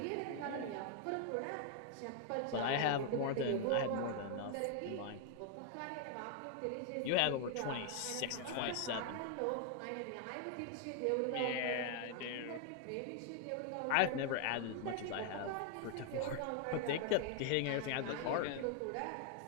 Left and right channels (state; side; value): different; both; correlation 0.00